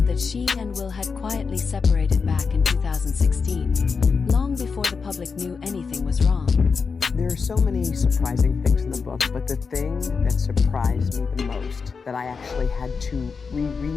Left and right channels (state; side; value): quieter; right; 5.2 dB